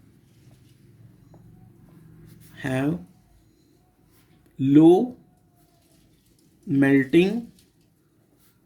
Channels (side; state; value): both; identical; correlation 1.00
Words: have low melting